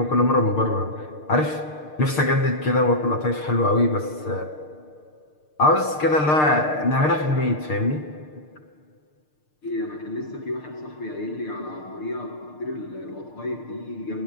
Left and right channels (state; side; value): late; right; 6.6 ms